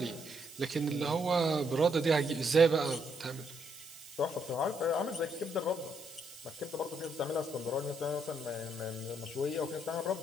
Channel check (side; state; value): right; noise; hiss, 17 dB below the sound